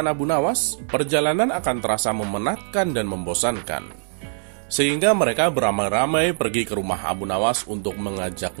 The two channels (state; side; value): silent; left; digital silence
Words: Abu Nawas, perjalanan akan terasa memenatkan dan membosankan. Sehingga mereka beramai-ramai pergi ke rumah Abu Nawas untuk